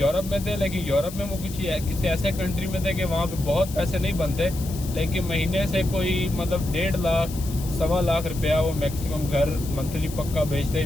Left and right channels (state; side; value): noise; left; hiss, 14 dB below the sound